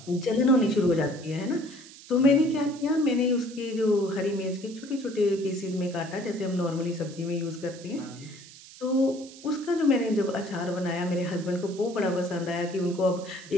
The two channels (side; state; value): right; noise; hiss, 19 dB below the sound